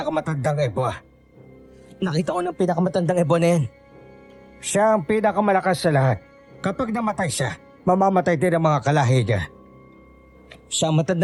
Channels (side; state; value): both; identical; correlation 1.00